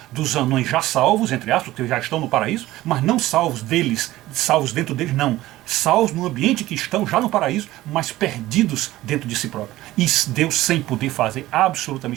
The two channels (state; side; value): quieter; left; 16.5 dB